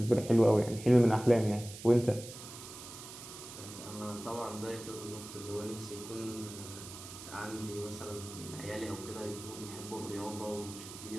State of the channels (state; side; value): noise; right; hiss, 13 dB below the sound